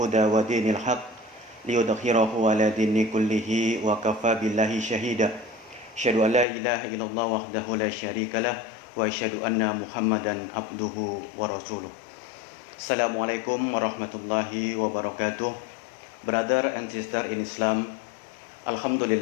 wa dinil haq liyudhhirahu ala dini kullihi wa kafa billahi syahida. Asyhadu an la ilaha illallah wahdahu la syarikalah wa asyhadu anna Muhammadan abduhu wa rasuluh. Assalamualaikum warahmatullahi wabarakatuh. Brother and sister in Islam,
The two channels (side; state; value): right; drops out; at 6.5 s